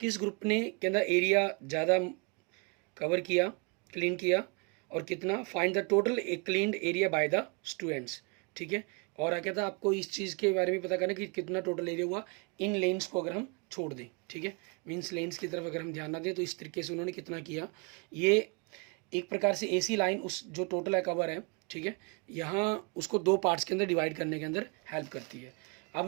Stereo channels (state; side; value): quieter; left; 32.5 dB